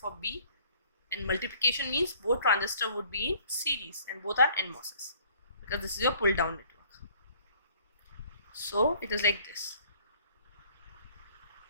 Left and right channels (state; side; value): inverted; both; correlation -0.57